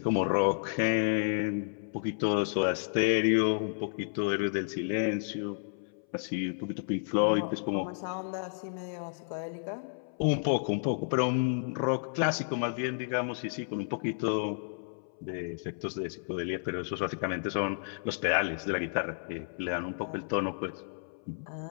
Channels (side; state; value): right; silent; 57 dB below the other